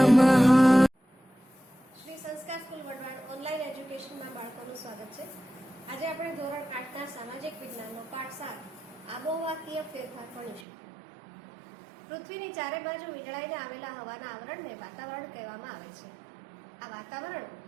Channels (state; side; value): drops out; left; at 10.7 s